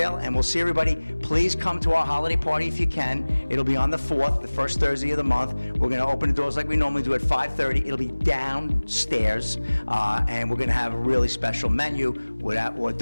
and we'll see everybody. Please come to our holiday party if you can. It'll be on the 4th, the first Thursday of the month. We're going to open the doors like we normally do at 5:30. It'll be downstairs, and we're going to have a really special menu with hors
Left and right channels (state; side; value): inverted; both; correlation -1.00